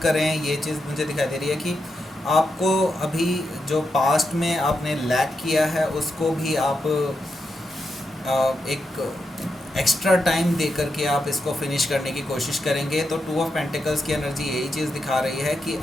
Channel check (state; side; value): normal; both; correlation 0.85